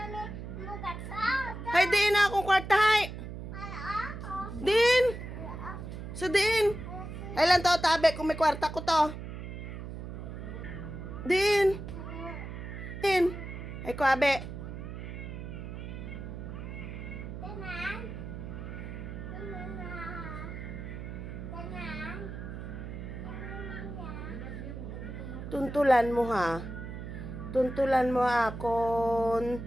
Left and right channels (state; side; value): noise; right; hum, 8 dB below the sound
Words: Hay diin na akong kwarta hay. Din. So din. Ay lang to tabi kung may kwarta ko to. Din. Din. Ay ko abe. Tuntulan mo ha. Tuntulan mo akon